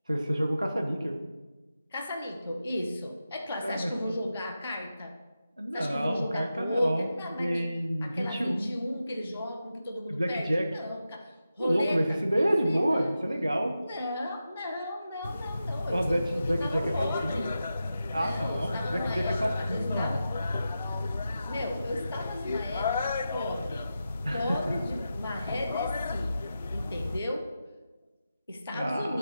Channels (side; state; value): both; inverted; correlation -0.91